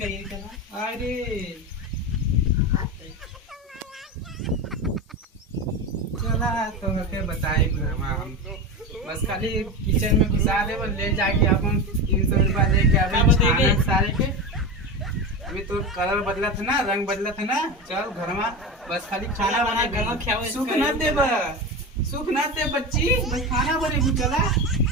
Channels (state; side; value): normal; both; correlation 0.22